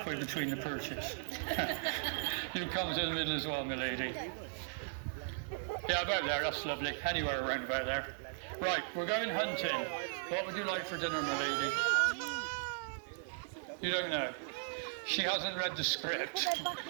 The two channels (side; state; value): left; silent; 53 dB below the other